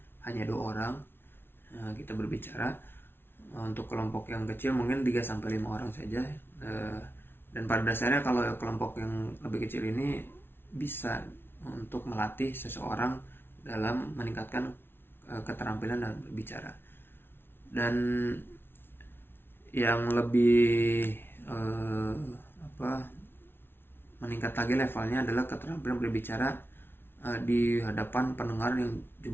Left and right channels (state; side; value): late; right; 0.11 ms